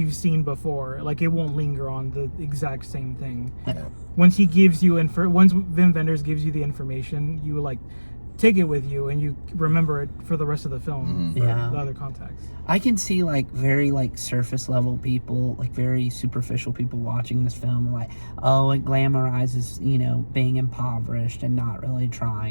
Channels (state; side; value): inverted; both; correlation -1.00